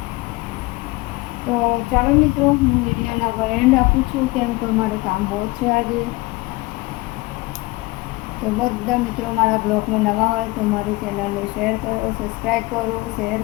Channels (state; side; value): quieter; right; 22.4 dB